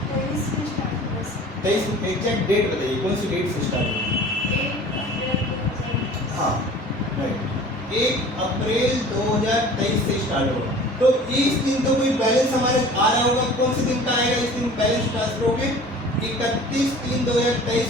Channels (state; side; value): normal; both; correlation 0.44